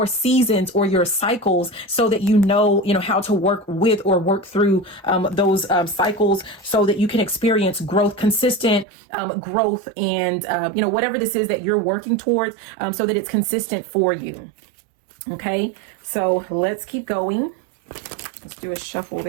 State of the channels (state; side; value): drops out; left; at 8.8 s